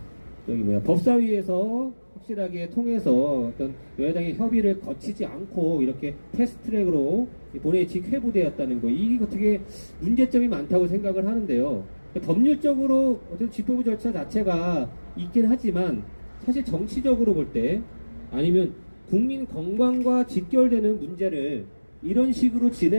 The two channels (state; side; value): inverted; both; correlation -1.00